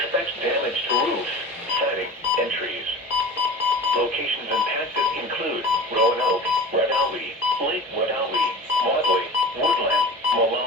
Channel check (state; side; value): normal; both; correlation 0.36